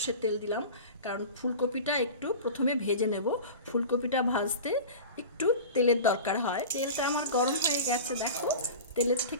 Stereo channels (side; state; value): both; inverted; correlation -0.33